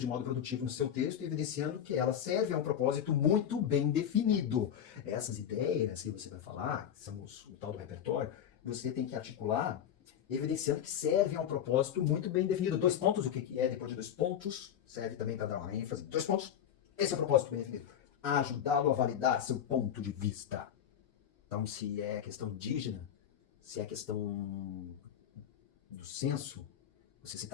modo produtivo no seu texto, evidenciando que ela serve a um propósito muito bem definido. Essas ideias que você vai falar, que são o tal do repertório, você tem que articular evidenciando que serve a um propósito muito bem definido. 2 pontos, o que é depois de 2 pontos, serve também para dar uma ênfase. 2 pontos, esse é o propósito bem definido. Ajudá-lo a validar seu ponto de vista. Então, se é questão indígena, se é questão do senso, você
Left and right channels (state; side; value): quieter; right; 9.4 dB